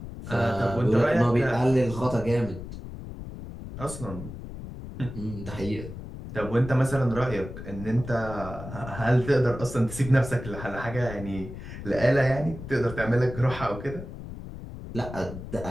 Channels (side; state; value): left; noise; rumble, 11 dB below the sound